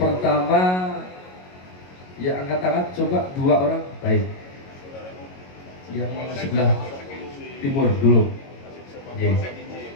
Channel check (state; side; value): late; right; 22 ms